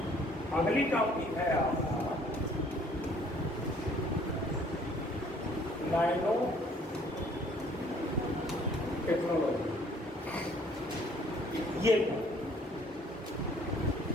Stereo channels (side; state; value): both; normal; correlation 0.59